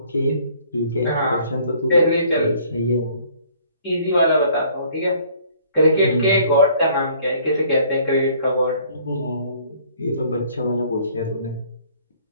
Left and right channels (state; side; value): inverted; both; correlation -0.58